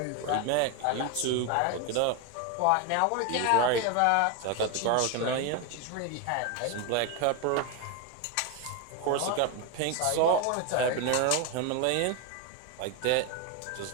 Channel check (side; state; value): both; different; correlation 0.02